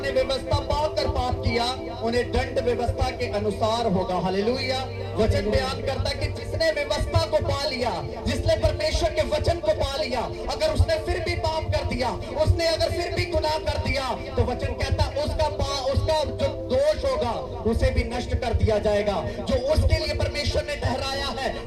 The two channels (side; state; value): both; identical; correlation 1.00